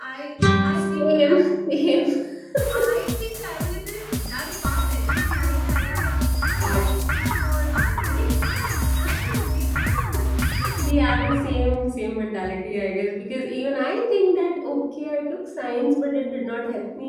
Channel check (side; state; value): both; identical; correlation 1.00